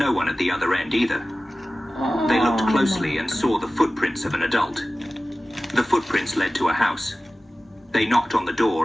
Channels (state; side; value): normal; both; correlation 0.96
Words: one at the other end either. They looked closely and saw the footprints of an adult. The footprints led to a house. They knocked on the